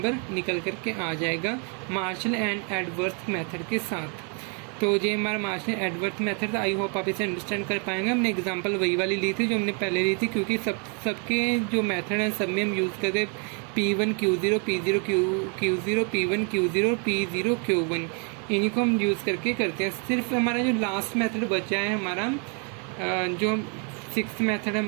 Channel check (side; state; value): left; quieter; 38.2 dB